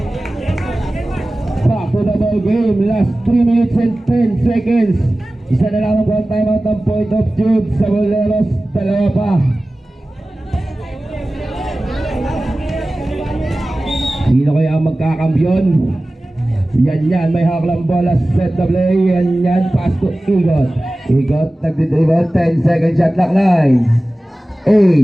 Back to the ball game. Last 3 minutes and 10 seconds. Isa na lamang po ang timeout ng Point of Truth sa Boleros. Dalawa pa. Sino kaya ang magkakambyon? Yan, may haklang bola, set the play, yan, pass to Igot. Igot, nagdidribble, 10 second shot, lock 9,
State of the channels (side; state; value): both; normal; correlation 0.97